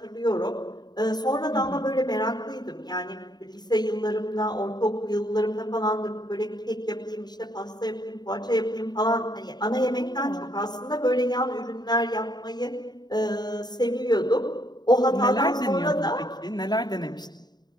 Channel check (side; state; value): right; late; 0.20 ms